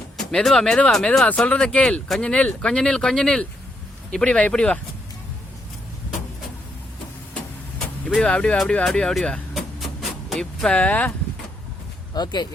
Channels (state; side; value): normal; both; correlation 0.77